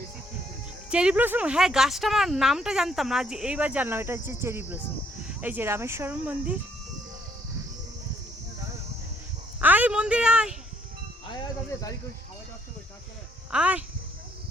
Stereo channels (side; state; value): both; normal; correlation 0.68